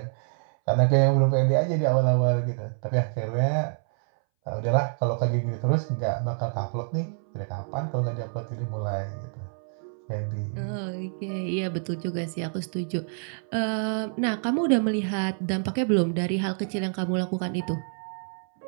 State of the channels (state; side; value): silent; left; 60 dB below the other